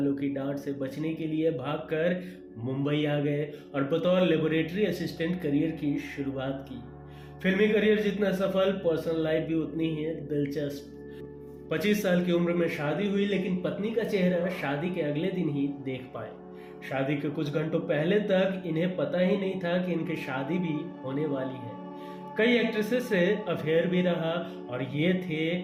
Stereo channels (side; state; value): both; identical; correlation 1.00